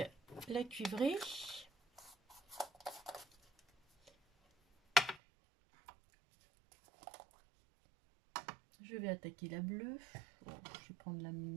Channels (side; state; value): left; drops out; at 5.2 s